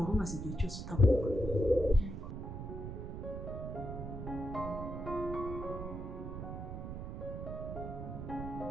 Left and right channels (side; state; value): right; noise; rumble, 6 dB below the sound